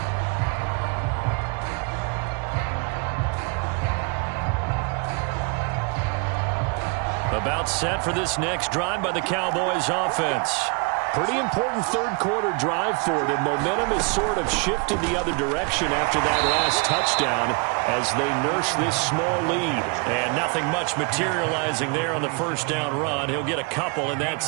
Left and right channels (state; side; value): quieter; left; 32.5 dB